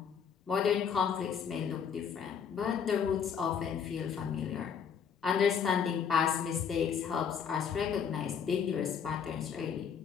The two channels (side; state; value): right; quieter; 7.3 dB